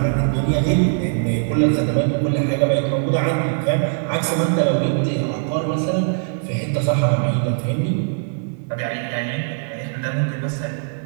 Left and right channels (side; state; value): left; silent; 65 dB below the other